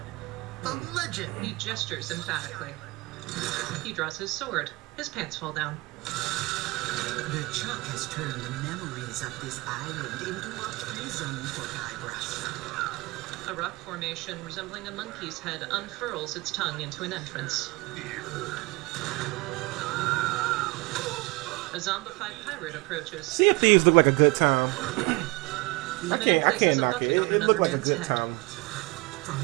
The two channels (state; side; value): quieter; left; 23.7 dB